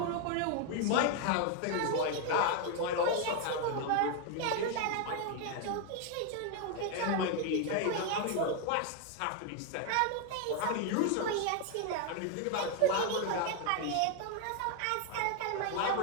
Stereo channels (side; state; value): both; different; correlation 0.01